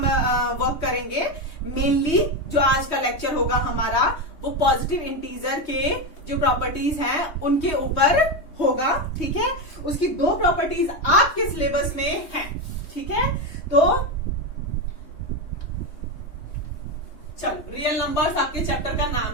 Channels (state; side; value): late; right; 3.2 ms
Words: वर्क करेंगे। मेनली जो आज का लेक्चर होगा हमारा वो पॉजिटिव इंटीजर के जो प्रॉपर्टीज हैं उनके ऊपर होगा। ठीक है, उसकी 2 प्रॉपर्टीज आपके सिलेबस में हैं। ठीक है, तो चलो, रियल नंबर्स आपके चैप्टर का